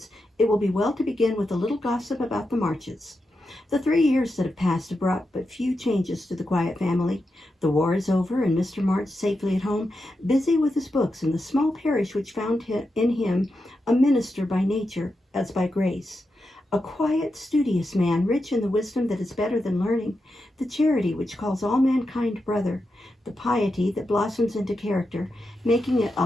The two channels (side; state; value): both; normal; correlation 0.88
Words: it will be well to begin with a little gossip about the Marches. The 3 years that have passed have brought but few changes to the quiet family. The war is over, and Mr. March safely at home, busy with his books in the small parish which found in him a minister by nature as by grace. A quiet, studious man, rich in the wisdom that is better than learning, the charity which calls all mankind brother, the piety that blossoms into character, making it